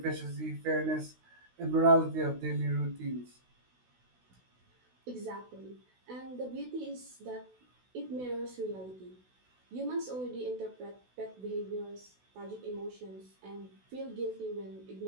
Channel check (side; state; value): left; late; 16 ms